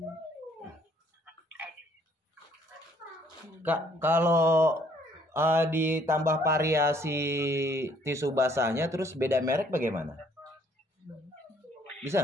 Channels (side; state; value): both; normal; correlation 0.63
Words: Edit. Kak, kalau ditambah variasi tisu basahnya terus beda merek bagaimana? Bisa?